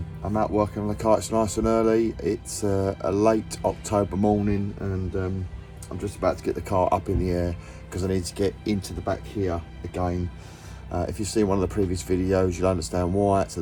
out working on the car. It's nice and early. It's a late October morning and I'm just about to get the car up in the air because I need to get into the back here again. If you've seen one of the previous videos, you'll understand why. So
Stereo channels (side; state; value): both; identical; correlation 1.00